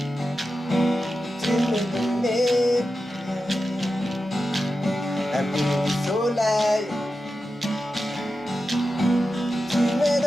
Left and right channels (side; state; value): both; normal; correlation 0.91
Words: Tu m'es donné un peu de soleil. Tu m'es